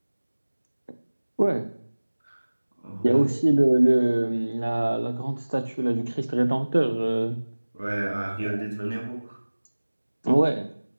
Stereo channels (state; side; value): inverted; both; correlation -1.00